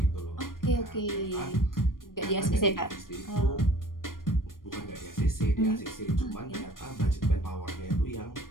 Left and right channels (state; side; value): late; right; 0.91 ms